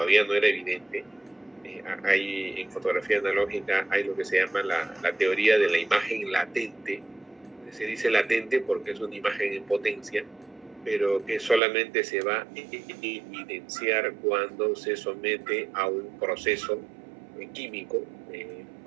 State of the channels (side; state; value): left; drops out; at 11.6 s